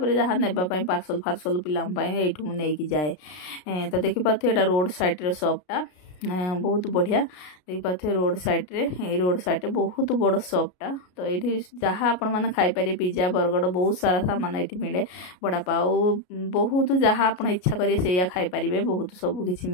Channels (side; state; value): right; late; 33 ms